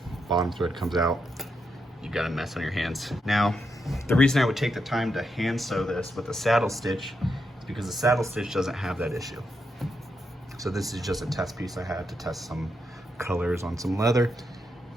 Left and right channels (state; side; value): normal; both; correlation 0.83